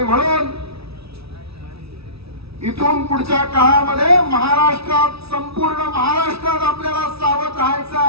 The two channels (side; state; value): left; late; 0.77 ms